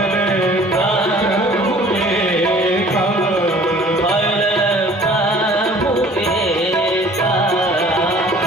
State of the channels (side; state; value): both; normal; correlation 0.51